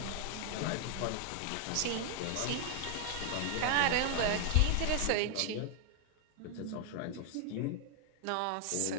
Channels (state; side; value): different; both; correlation 0.00